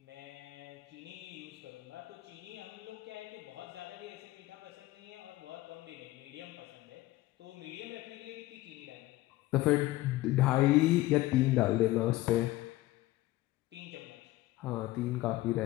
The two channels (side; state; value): right; quieter; 17.5 dB